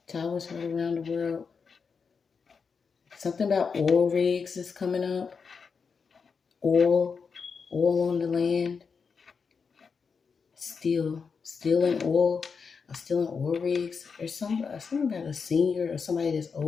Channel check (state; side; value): quieter; right; 5.5 dB